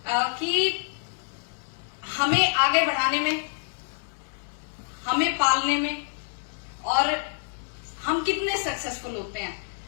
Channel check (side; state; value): right; silent; digital silence